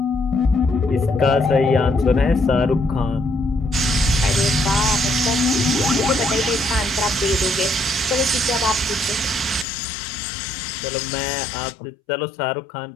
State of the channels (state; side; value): drops out; right; at 9.7 s